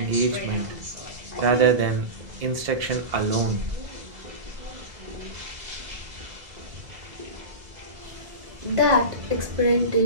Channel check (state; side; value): late; left; 1.7 ms